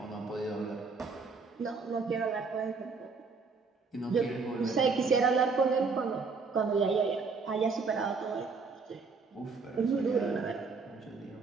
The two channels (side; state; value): left; quieter; 4.6 dB